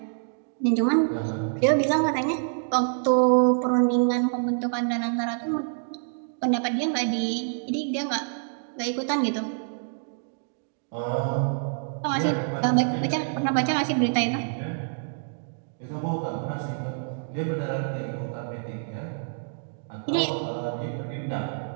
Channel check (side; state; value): left; silent; digital silence